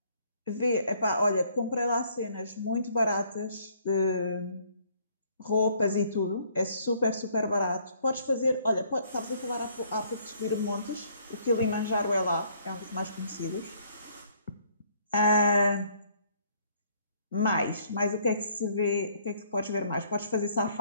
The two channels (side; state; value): both; inverted; correlation -0.63